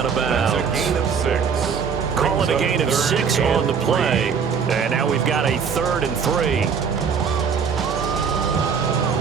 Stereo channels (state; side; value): quieter; left; 6.4 dB